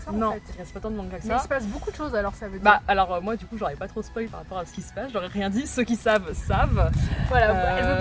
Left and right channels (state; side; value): identical; both; correlation 1.00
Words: ça Non, en fait. il reste pas tant de manga que Mais il ça. se passe beaucoup de choses alors ça veut dire. Bah alors moi du coup j'aurais pas trop spoil par rapport à ce qui se passe, j'aurais rien dit, ceux qui savent, savent. Voilà, elle veut